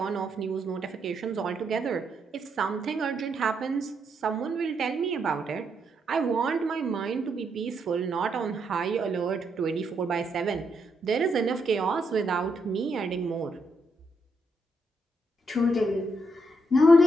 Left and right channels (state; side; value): normal; both; correlation 0.78